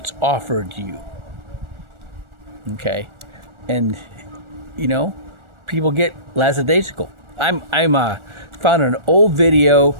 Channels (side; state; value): left; late; 1.4 ms